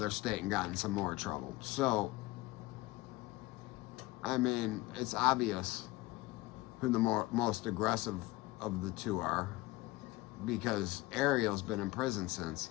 state and got in some more trouble. So, I mean, it's obvious who the most aggressive of the 2 are, because Ariel's been in prison since,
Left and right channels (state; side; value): quieter; right; 19.3 dB